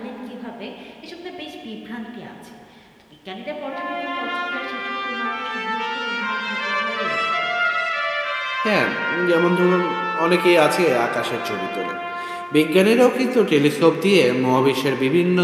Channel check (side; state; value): both; identical; correlation 1.00